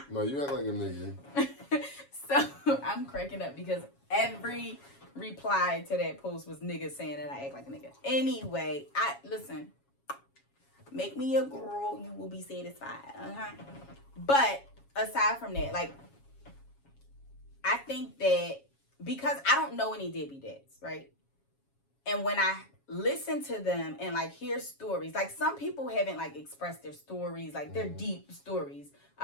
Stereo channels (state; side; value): late; right; 7.2 ms